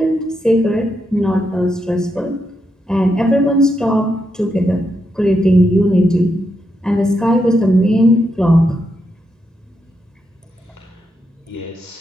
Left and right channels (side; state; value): both; normal; correlation 0.83